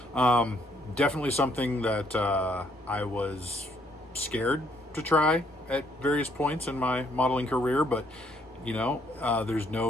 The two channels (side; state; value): both; normal; correlation 0.69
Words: Definitely something that I was scared to try at various points in my modeling career, but there's